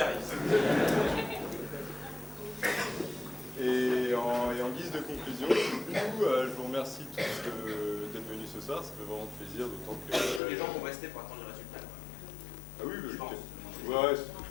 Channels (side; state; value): right; drops out; at 10.4 s